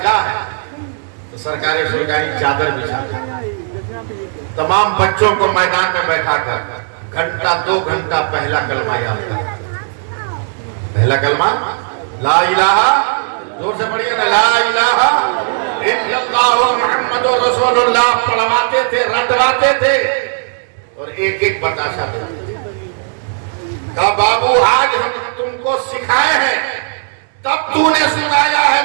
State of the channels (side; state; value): left; silent; 70 dB below the other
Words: کہا ہے. تو سرکار سرکاری چادر بچھا تمام بچوں کو میدان میں بیٹھا کر گھنٹہ 2 گھنٹہ پہلا کلمہ یاد کر. پہلا کلمہ لا الہ، زور سے پڑھیے نا، لا الہ الا اللہ محمد رسول اللہ پڑھواتے تھے، رٹواتے تھے اور ایک ایک بتاشا دیتے تھے. کہا بابو آج ہم تم کو سکھائے ہیں، تب تو نے سنایا ہے